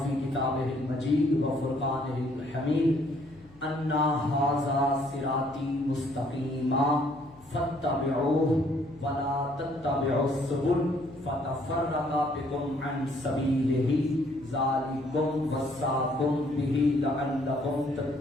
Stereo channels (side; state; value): left; noise; hum, 25 dB below the sound